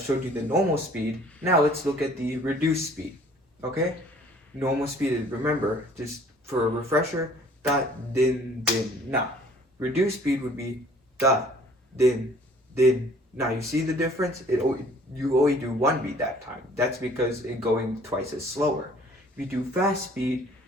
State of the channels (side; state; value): both; normal; correlation 0.54